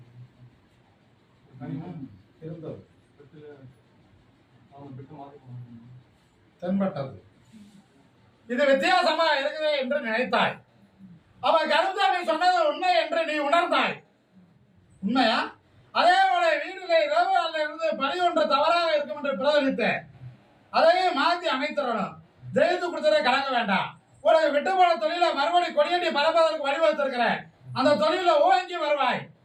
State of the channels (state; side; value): identical; both; correlation 1.00